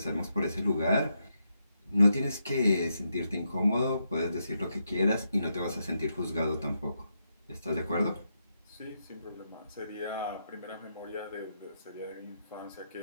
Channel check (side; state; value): both; inverted; correlation -0.82